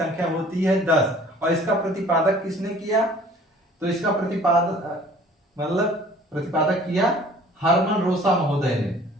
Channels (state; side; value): normal; both; correlation 0.51